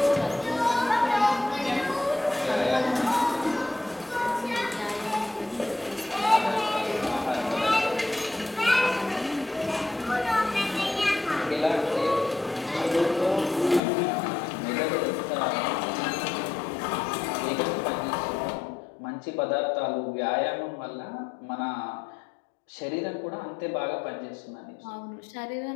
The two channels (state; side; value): drops out; right; at 13.8 s